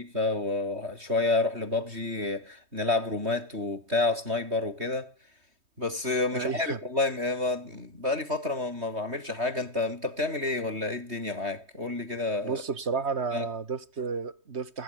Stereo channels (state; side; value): late; left; 3.2 ms